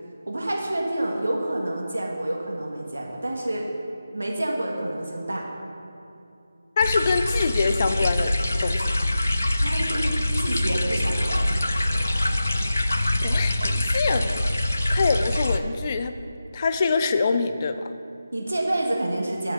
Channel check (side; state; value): both; inverted; correlation -0.92